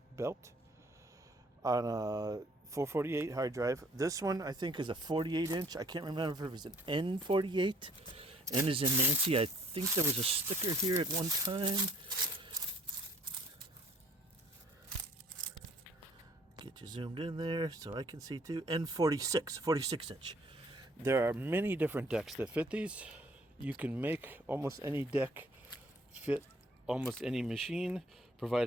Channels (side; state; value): both; normal; correlation 0.59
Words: belt on a 448 hard drive. This one I think is a 48 inch. I can't remember if it was an N48. N is in Nancy. I think there was a sticker here at one time. Get you zoomed in there so I can see too. N46, 46 inch. There are many different decks that fit these. You can make almost any deck fit almost any machine,